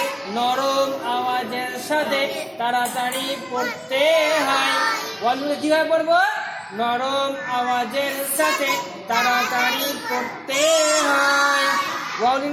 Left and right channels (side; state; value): both; identical; correlation 1.00